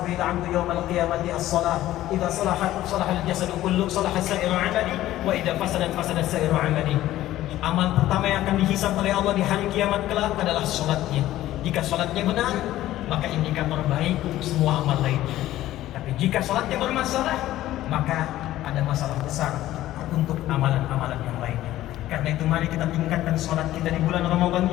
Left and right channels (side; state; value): right; quieter; 14.5 dB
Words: bil 'abdu yawm al-qiyamati as-salah. Idza salahat salaha al-jasadu kullu, salaha sa'iru 'amali, wa idza fasadat fasada sa'iru 'amali. Amal pertama yang akan dihisab oleh Allah di hari kiamat kelak adalah salatnya. Jika salatnya benar, maka indikator baik untuk semua amal lainnya. Tapi jika salatnya bermasalah, maka ada masalah besar untuk amalan-amalan yang lainnya. Karena itu mari kita tingkatkan salat kita di bulan Ramadan